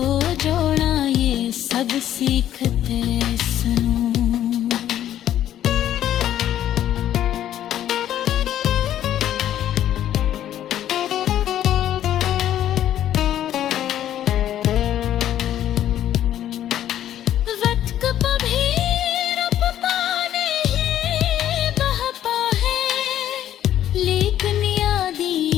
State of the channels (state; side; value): quieter; right; 11.6 dB